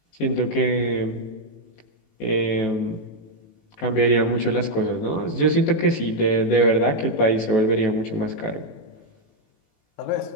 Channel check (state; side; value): late; right; 18 ms